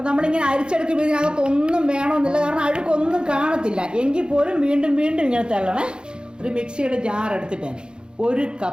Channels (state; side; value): late; left; 0.050 ms